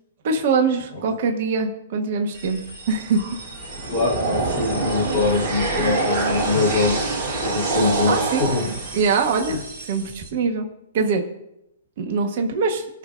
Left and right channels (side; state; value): both; inverted; correlation -0.37